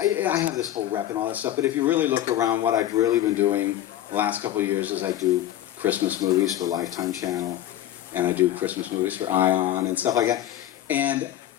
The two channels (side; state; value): right; quieter; 12.5 dB